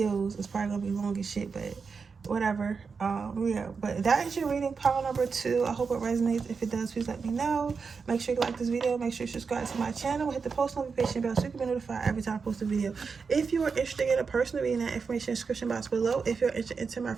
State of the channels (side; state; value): left; quieter; 5.3 dB